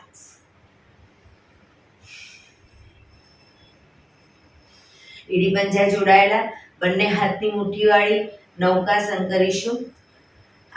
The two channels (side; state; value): both; identical; correlation 1.00